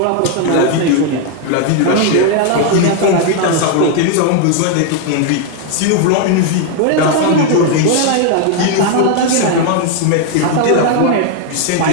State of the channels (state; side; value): different; both; correlation 0.00